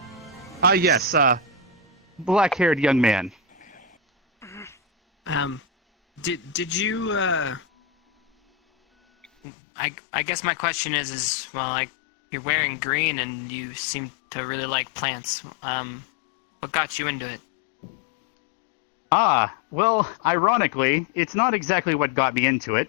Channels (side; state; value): right; drops out; at 9.2 s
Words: Yes. Black-haired young man. Did you I guess my question is well, like, you're wearing green and you seem to really like plants. What got you into it? Well, ironically, it's not exactly what got me into